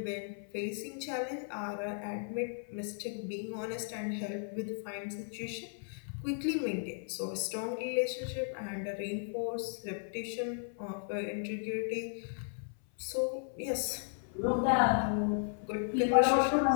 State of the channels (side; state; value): right; silent; 54 dB below the other